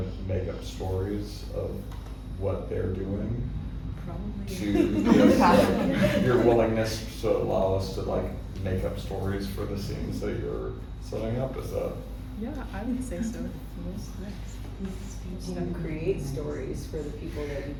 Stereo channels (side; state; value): both; identical; correlation 1.00